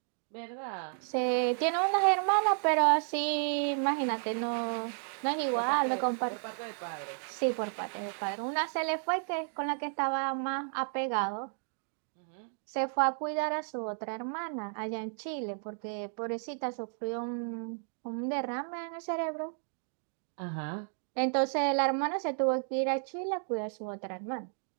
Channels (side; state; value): left; silent; 56 dB below the other